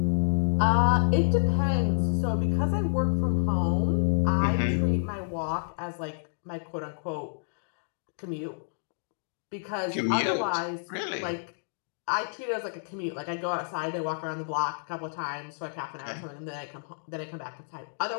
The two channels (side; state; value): right; silent; digital silence